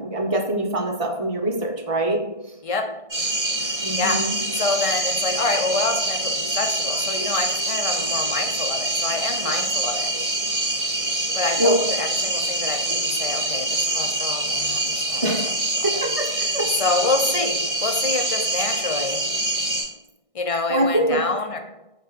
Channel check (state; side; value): late; right; 1.6 ms